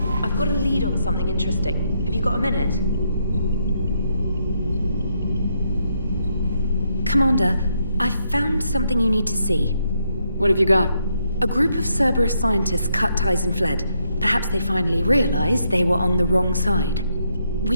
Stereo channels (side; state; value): both; inverted; correlation -0.77